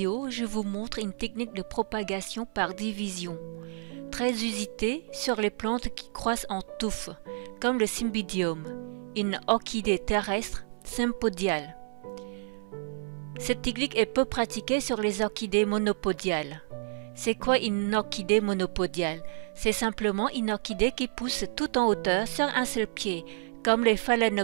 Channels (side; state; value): left; silent; 58 dB below the other